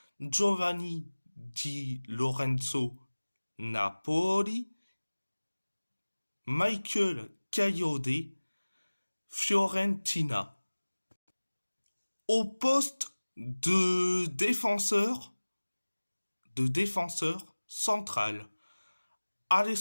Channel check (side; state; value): both; inverted; correlation -1.00